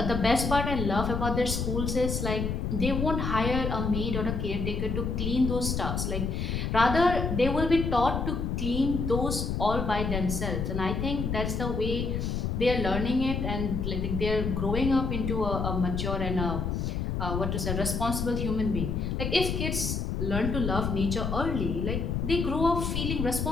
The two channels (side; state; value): left; noise; rumble, 1 dB below the sound